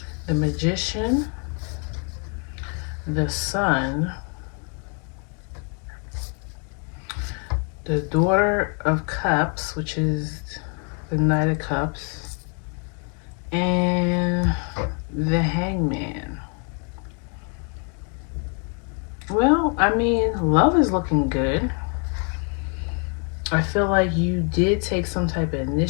The Magician, the Sun, the Daughter of Cups, which is the Knight of Cups, and mean, love is looking good. I feel like you did take some type of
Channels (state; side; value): quieter; right; 39.0 dB